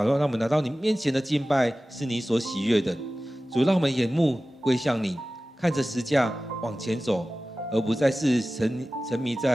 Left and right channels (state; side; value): normal; both; correlation 0.96